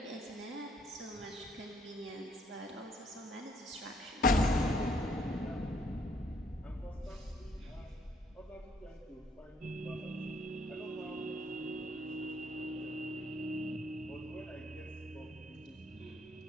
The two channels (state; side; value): normal; both; correlation 0.66